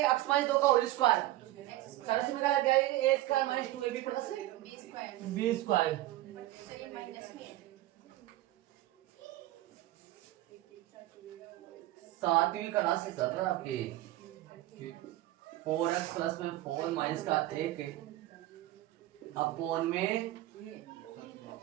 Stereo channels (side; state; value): left; quieter; 16.3 dB